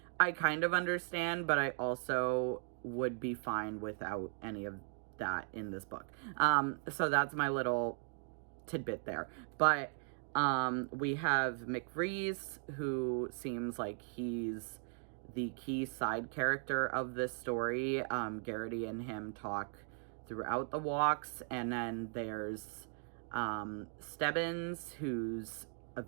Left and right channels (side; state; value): left; silent; 52 dB below the other